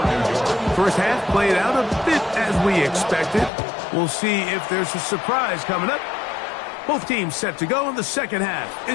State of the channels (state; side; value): drops out; right; at 3.5 s